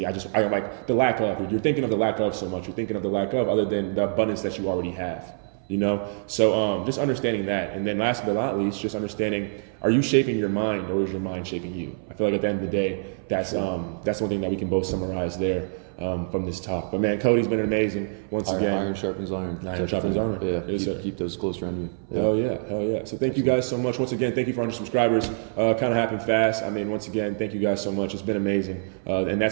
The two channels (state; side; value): silent; left; 59 dB below the other